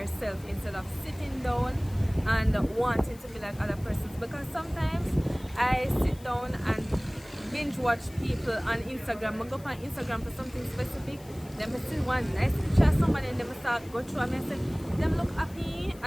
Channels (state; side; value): noise; left; hiss, 23 dB below the sound